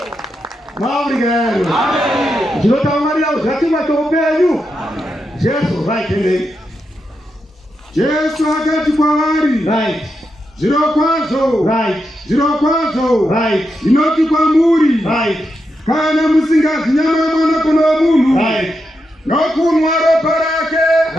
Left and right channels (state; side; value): normal; both; correlation 0.85